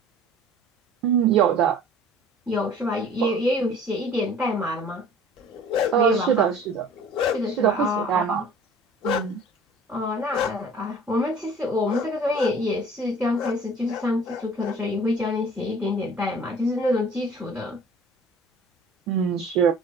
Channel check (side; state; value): both; normal; correlation 0.47